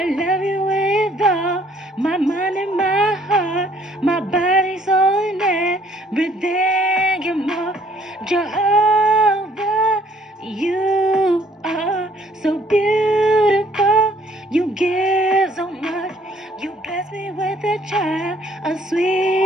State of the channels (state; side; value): normal; both; correlation 0.61